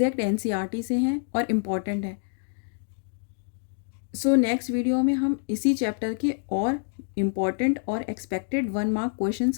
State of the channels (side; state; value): right; silent; digital silence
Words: एनसीईआरटी से हैं और इम्पॉर्टेंट है। सो नेक्स्ट वीडियो में हम इसी चैप्टर के और इम्पॉर्टेंट और एक्सपेक्टेड 1 मार्क